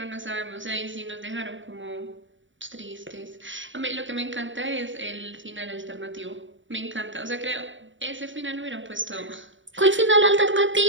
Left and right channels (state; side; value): late; left; 0.55 ms